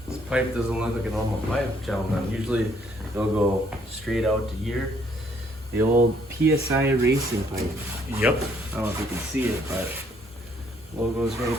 This pipe doesn't look like a normal pipe, gentlemen. Usually they'll go straight out to here. The old PSI racing pipe. Yep. I don't know if you can see it, but logo's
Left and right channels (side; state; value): both; normal; correlation 0.66